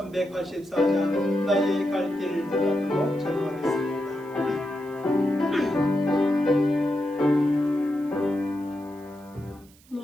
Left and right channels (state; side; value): noise; right; hiss, 28 dB below the sound